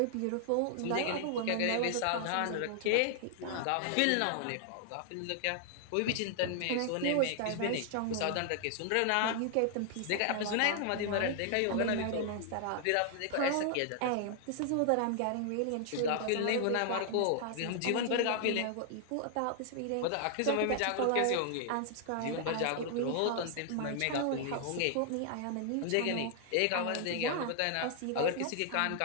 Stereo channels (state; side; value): different; both; correlation 0.00